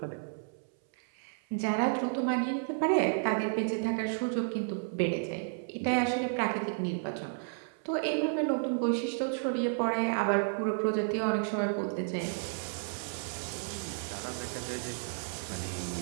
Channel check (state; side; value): silent; left; 56 dB below the other